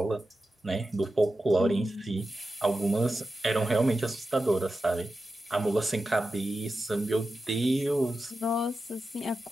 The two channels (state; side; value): normal; both; correlation 0.92